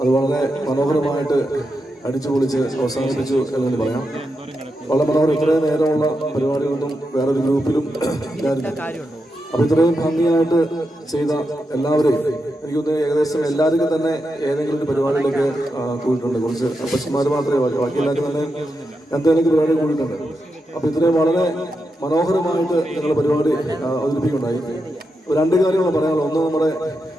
അത് വളരെ മനോഹരമായിട്ട് അടിച്ചു പൊളിച്ച് അവസാനിപ്പിച്ചു എന്ന് പറയാം. വളരെ മനോഹരം. ഇത്രയും നേരമുള്ള പരിപാടികളൊന്നും വേറൊരു ഗ്രൂപ്പിലും ഇല്ലായിരുന്നു. അപ്പൊ ഇത്രയും ഭംഗിയായിട്ട് ചെയ്ത എല്ലാവരെയും എനിക്ക് തോന്നുന്നു ഏകദേശം എല്ലാവർക്കും തന്നെ ഏതെങ്കിലും ഒരു പരിപാടിയിലൊക്കെ കൂടിയിട്ടുണ്ട്. കുറച്ച് അപ്പച്ചന്മാർ മാത്രമേ ബാക്കി എല്ലാവർക്കും തന്നെ എന്തെങ്കിലും പരിപാടി കൂടിയിട്ടുണ്ട്. അപ്പൊ ഇത്രയും വളരെ മനോഹരമായിട്ട് ഞങ്ങളുടെ പരിപാടി അവതരിപ്പിക്കുന്നുണ്ടായി. രണ്ട് കാര്യങ്ങൾ പറയാനുള്ളത്. ഒന്ന്, നമ്മുടെ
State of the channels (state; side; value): normal; both; correlation 0.86